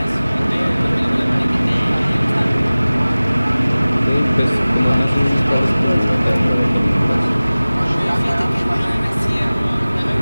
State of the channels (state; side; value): inverted; both; correlation -0.99